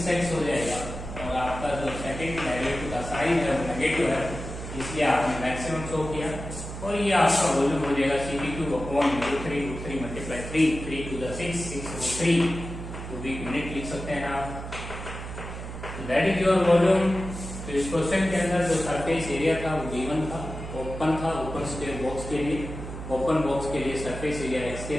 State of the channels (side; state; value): right; noise; hum, 9 dB below the sound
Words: हो जाएगा और आपका जो सेकंड डेरिवेटिव का साइन है वो नेगेटिव है, इसलिए आपने मैक्सिमम शो किया। और ये आपका वॉल्यूम हो जाएगा c/3 multiply 3 to the 6 6/3 cubic unit लिख सकते हैं आप। That is your volume. तो इस क्वेश्चन के अंदर जो सरफेस एरिया था वो गिवन था, ओपन था, ओपन स्क्वायर बॉक्स के लिए। ओपन बॉक्स के लिए सरफेस एरिया x²